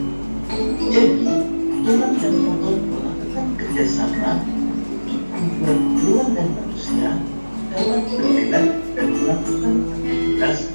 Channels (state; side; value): inverted; both; correlation -1.00